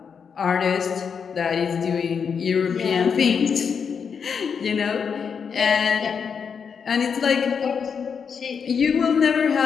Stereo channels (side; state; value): right; quieter; 6.5 dB